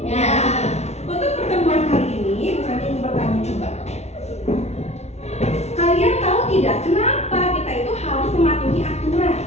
Untuk pertemuan kali ini, saya ingin bertanya coba. Kalian tahu tidak kenapa kita itu harus mematuhi aturan?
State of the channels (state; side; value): late; right; 0.31 ms